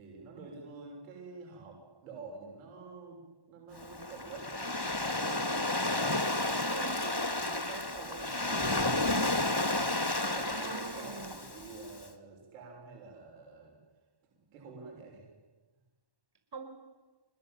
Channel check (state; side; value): late; left; 1.1 ms